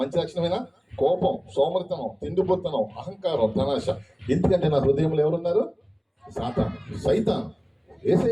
లక్షణమేనా? కోపం, సోమరితనం, తిండిపోతనం, అహంకారం, ధనాశ. ఎందుకంటే నా హృదయంలో ఎవరున్నారు? సాతాను, సైతాన్.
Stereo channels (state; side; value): identical; both; correlation 1.00